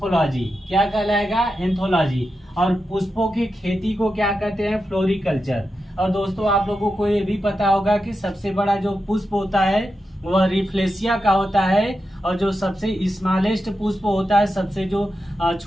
क्या कहलाएगा, एंथोलॉजी। और पुष्पों की खेती को क्या कहते हैं, फ्लोरिकल्चर। और दोस्तों, आप लोगों को ये भी पता होगा कि सबसे बड़ा जो पुष्प होता है वह रिफ्लेशिया का होता है, और जो सबसे स्मॉलेस्ट पुष्प होता है, सबसे जो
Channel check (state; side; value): normal; both; correlation 0.89